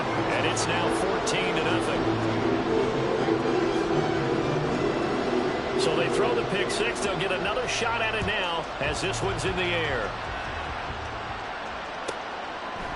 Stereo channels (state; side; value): identical; both; correlation 1.00